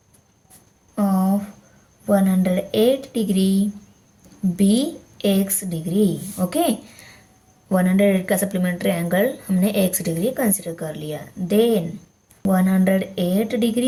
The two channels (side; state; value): both; identical; correlation 1.00